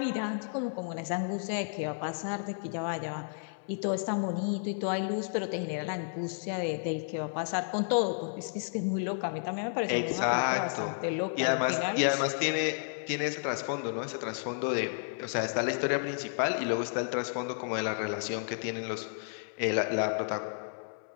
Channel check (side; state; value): right; silent; 56 dB below the other